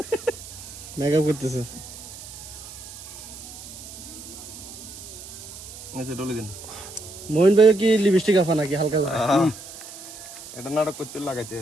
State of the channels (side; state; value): right; noise; hiss, 14 dB below the sound